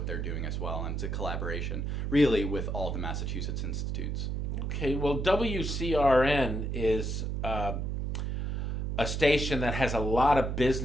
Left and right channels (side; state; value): right; noise; hum, 1 dB below the sound